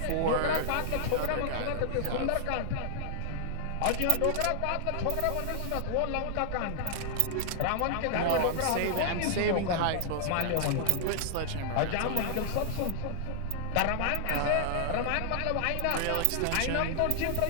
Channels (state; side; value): different; both; correlation 0.00